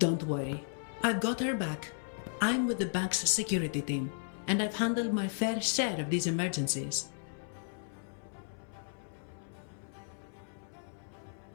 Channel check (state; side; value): silent; right; 55 dB below the other